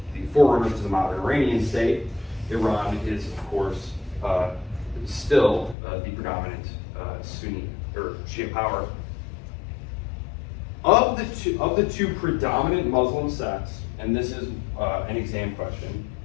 forerunners to the modern Iranian state. Iran is, of course, still the predominant Sunni or Shia power. Of the two predominant Muslim sects, and this is an exam question,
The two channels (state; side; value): drops out; right; at 5.8 s